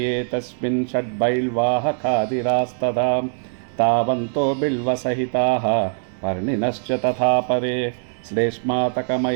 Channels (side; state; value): left; silent; 64 dB below the other